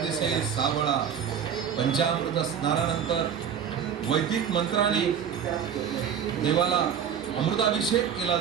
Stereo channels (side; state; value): left; quieter; 8.1 dB